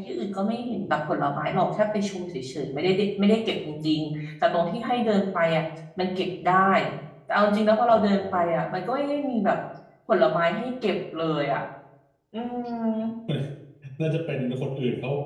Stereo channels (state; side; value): identical; both; correlation 1.00